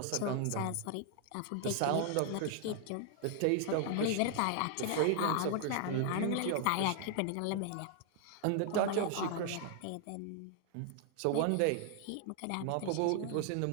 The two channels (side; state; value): both; different; correlation 0.00